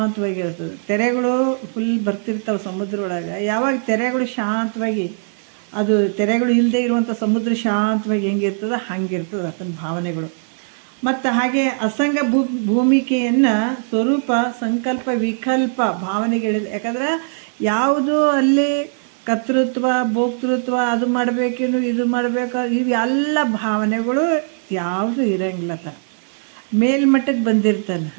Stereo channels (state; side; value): silent; left; digital silence